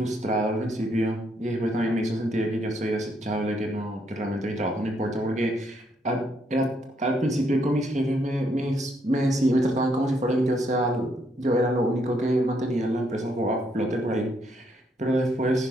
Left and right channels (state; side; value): normal; both; correlation 0.74